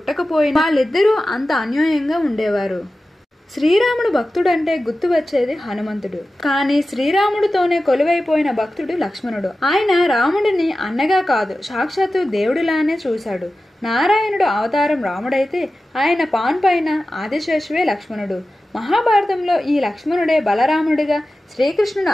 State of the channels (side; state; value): both; normal; correlation 0.94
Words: వాళ్ళిద్దరూ అంత అన్యోన్యంగా ఉండేవారు. శ్రీరాముడు భక్తుడంటే గుర్తు వచ్చేది హనుమంతుడు. కానీ శ్రీరాముడితోనే కొలువైపోయిన భక్తుడు లక్ష్మణుడు. ఆయన రాముడిని అన్నగా కాదు, సాక్షాత్తు దేవుడిలానే చూశాడు. నారాయణుడు అవతారం రాముడైతే ఆయన పాన్ పైన ఆదిశేషువే లక్ష్మణుడు. మహాభారతంలో ఈ లక్ష్మణుడే బలరాముడిగా శ్రీకృష్ణుడు